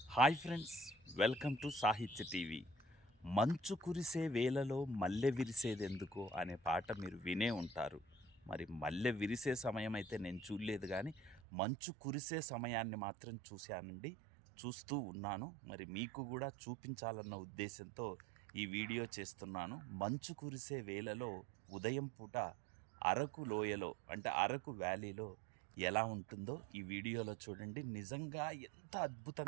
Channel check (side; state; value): left; drops out; at 11.4 s